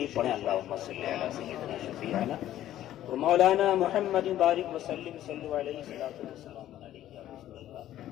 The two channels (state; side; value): quieter; right; 12.8 dB